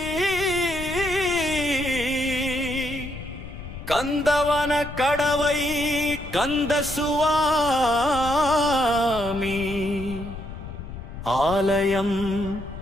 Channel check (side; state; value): left; noise; rumble, 11 dB below the sound